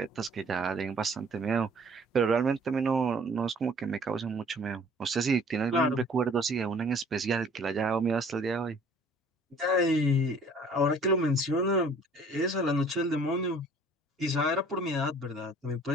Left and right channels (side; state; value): both; normal; correlation 0.53